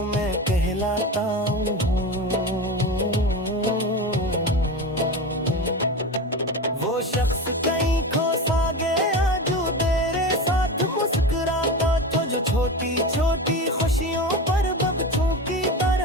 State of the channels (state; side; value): normal; both; correlation 0.25